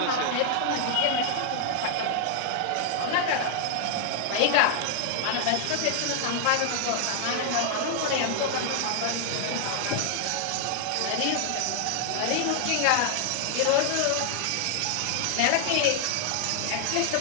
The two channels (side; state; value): both; different; correlation 0.00